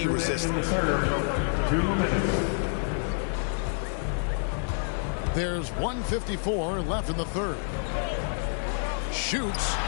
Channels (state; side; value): silent; right; 59 dB below the other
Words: resistance. 2 minutes. There's 1:54 left in the third. Shoots.